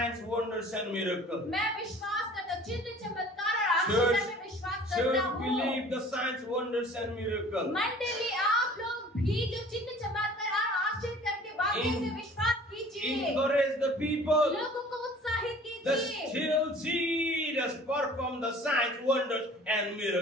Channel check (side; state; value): both; normal; correlation 0.48